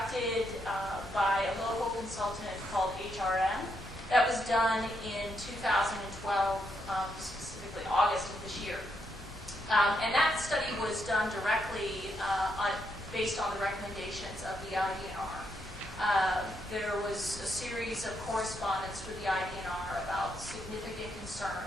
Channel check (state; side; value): normal; both; correlation 0.79